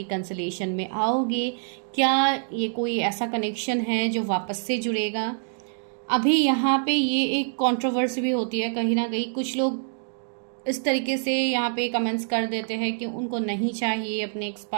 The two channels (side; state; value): left; silent; digital silence